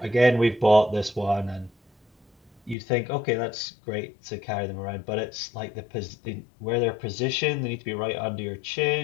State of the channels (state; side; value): drops out; right; at 2.8 s